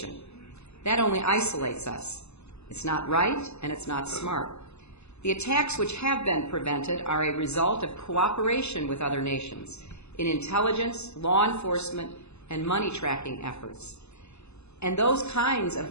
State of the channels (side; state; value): right; late; 0.80 ms